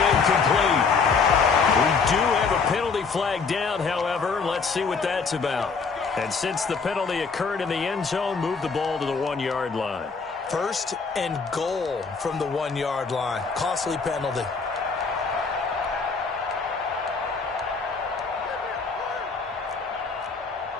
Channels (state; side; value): quieter; right; 5.0 dB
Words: incomplete. We do have a penalty flag down, however. Let's see what that's about. And since the penalty occurred in the end zone, move the ball to the 1-yard line. 1st and goal from the 1-yard line. Costly penalty.